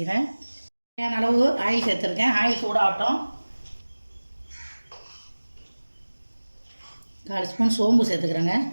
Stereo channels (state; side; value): inverted; both; correlation -1.00